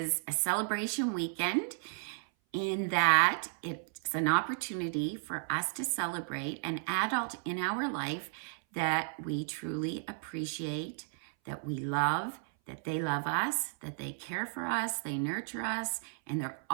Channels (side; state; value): left; silent; 55 dB below the other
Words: a celebration weekend in that it's an opportunity for us to celebrate an adult in our life that we truly appreciate, that we love, that they love us, that they care for us, they nurture us, and they're